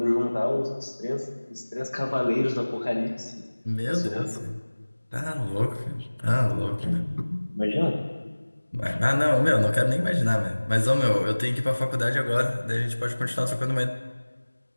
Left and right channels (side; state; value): both; inverted; correlation -1.00